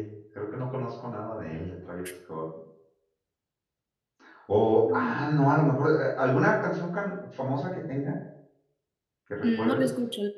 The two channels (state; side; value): identical; both; correlation 1.00